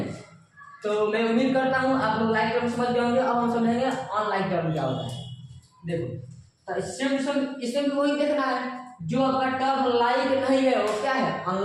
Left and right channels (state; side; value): identical; both; correlation 1.00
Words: तो मैं उम्मीद करता हूँ आप लोग लाइक टर्म समझ गए होंगे। अब हम समझेंगे अनलाइक टर्म क्या होता है। देखो तो इसमें भी वही देखना है, जो आपका टर्म लाइक नहीं है वो क्या है